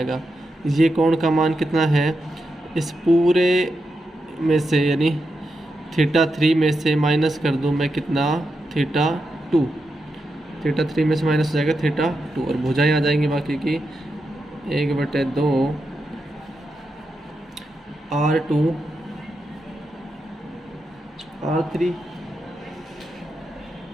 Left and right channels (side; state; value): both; normal; correlation 0.86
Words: ये कोण का मान कितना है, इस पूरे में से यानी θ3 में से माइनस कर दूँ मैं कितना, θ2, θ3 में से माइनस हो जाएगा θ2 और भुजाएं आ जाएंगी बाकी की 1/2 R2 R3